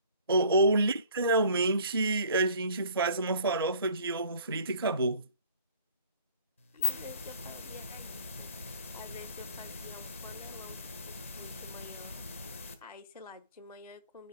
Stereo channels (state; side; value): inverted; both; correlation -0.53